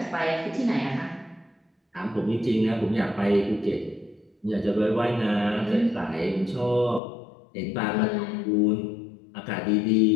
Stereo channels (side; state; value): right; drops out; at 7.0 s